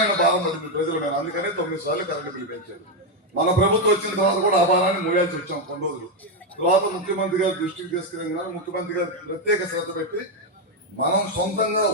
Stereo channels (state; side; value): normal; both; correlation 0.05